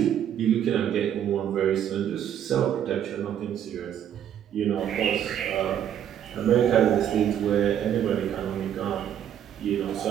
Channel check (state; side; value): quieter; left; 9.9 dB